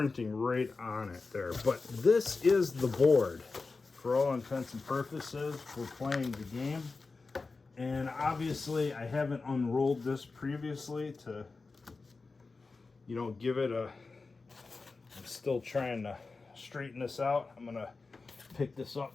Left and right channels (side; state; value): right; quieter; 4.0 dB